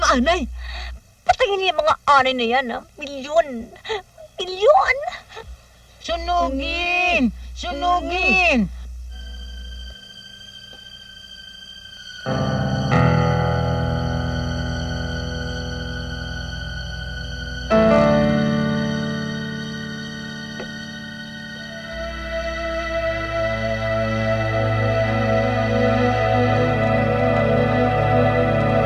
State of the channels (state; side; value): identical; both; correlation 1.00